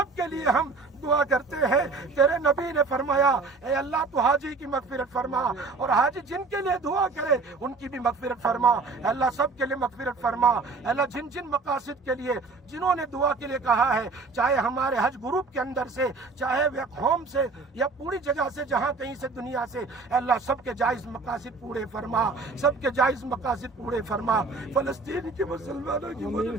کے لیے ہم دعا کرتے ہیں۔ تیرے نبی نے فرمایا اے اللہ تو حاجی کی مغفرت فرما، اور حاجی جن کے لیے دعا کرے ان کی بھی مغفرت فرما، اے اللہ سب کے لیے مغفرت فرما، اے اللہ جن مقاصد کے لیے جنہوں نے دعا کے لیے کہا ہے، چاہے ہمارے حج گروپ کے اندر سے، چاہے بیک ہوم سے، یا پوری جگہ سے، جہاں کہیں سے دنیا سے، اے اللہ سب کے جائز مقاصد پورے فرما، سب کے جائز مقاصد پورے فرما، فلسطین کے مسلمانوں کی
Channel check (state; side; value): quieter; left; 4.1 dB